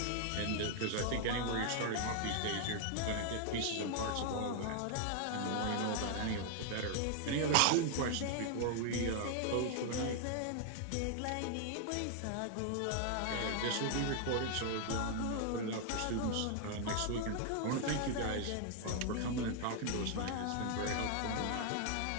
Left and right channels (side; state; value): both; different; correlation 0.00